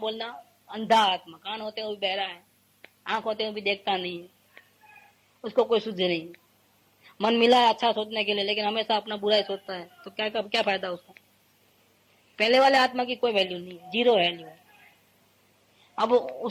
अंधा आत्मा। कान होते हुए भी बहरा है, आंख होते हुए भी देखता नहीं है, उसको कोई शुद्धि नहीं है। मन मिला है अच्छा सोचने के लिए, लेकिन हमेशा अपना बुरा ही सोचता है, तो क्या फायदा उसका? पहले वाले आत्मा की कोई वैल्यू नहीं है, जीरो वैल्यू है। अब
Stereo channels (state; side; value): identical; both; correlation 1.00